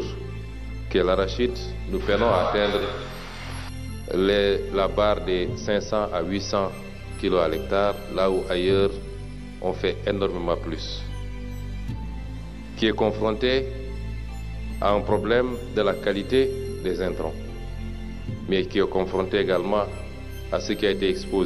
qui est l'arachide, nous peinons à atteindre la barre des 500 à 800 kilos à l'hectare, là où ailleurs on fait énormément plus. Qui est confronté à un problème de la qualité des intrants, mais qui est confronté également à ce qui a été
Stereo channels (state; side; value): identical; both; correlation 1.00